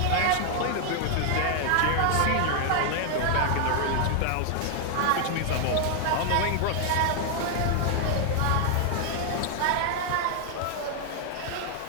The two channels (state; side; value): different; both; correlation 0.00